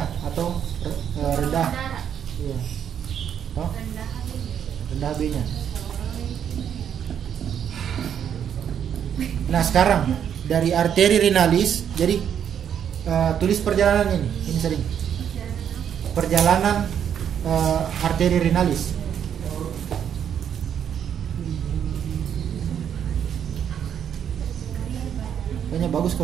atau rendah. darah. Iya. Toh? Rendah HB. Rendah HB-nya. Nah sekarang dari arteri renalis, jadi tulis perjalanan ini sering. Perjalanan arteri renalis. Kayaknya bagus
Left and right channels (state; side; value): quieter; left; 8.7 dB